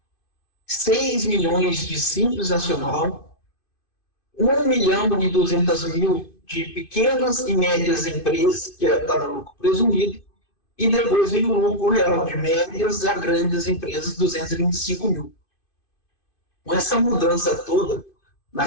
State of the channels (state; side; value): late; right; 2.5 ms